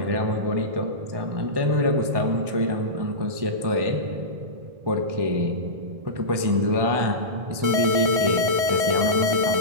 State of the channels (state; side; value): late; left; 1.2 ms